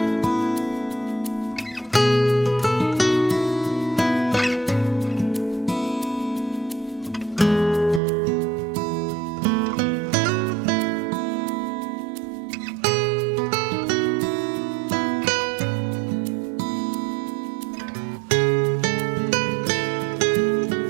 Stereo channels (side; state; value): left; drops out; at 8.0 s